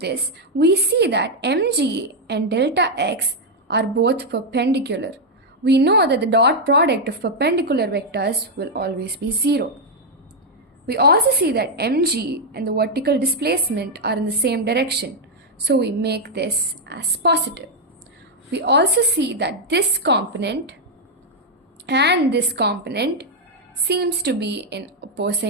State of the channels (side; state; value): both; normal; correlation -0.01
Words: we see that mg and delta x are both perpendicular. We know that the dot product of perpendicular vectors will always be 0. We also see that mg and the vertical displacement are in the same direction, so we make this as positive. We also see that this component and this component seems to be in